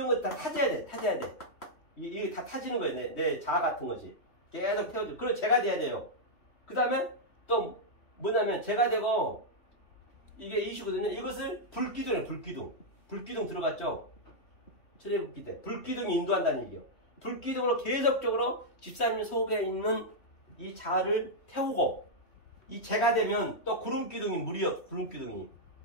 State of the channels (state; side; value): late; right; 3.1 ms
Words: 다 타져야 돼. 이게 다 타지는 거예요. 내 자아 같은 것이 계속 태워줘. 그리고 제가 돼야 돼요. 그 다음에 또 뭐냐면 제가 되고 이게 이슈거든요. 이것을 불기둥이에요. 불기둥 들어갔죠. 철회복기 때 불기둥이 인도한다는 얘기예요. 불기둥으로 계속적으로 집사님 속에 있는 이 자아를 태우고 이 제가 되면 또 구름기둥이 물이요.